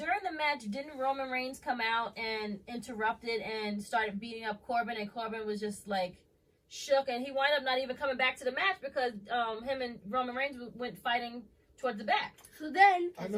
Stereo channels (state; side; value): identical; both; correlation 1.00